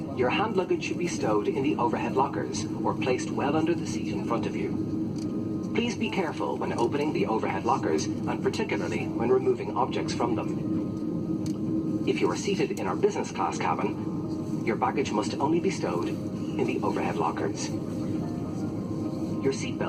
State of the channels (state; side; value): identical; both; correlation 1.00